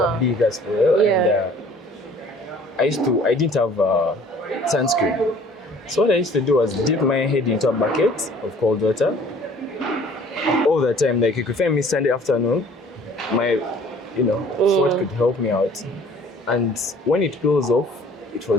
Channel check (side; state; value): both; normal; correlation 0.53